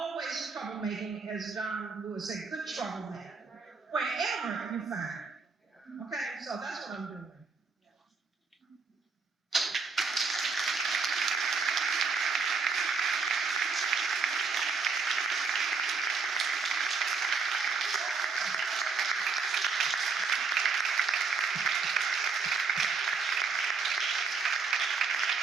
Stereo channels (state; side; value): quieter; left; 4.7 dB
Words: troublemaking, as John Lewis said, good troublemaking, wherever you find it. Okay, so that's what I'm doing.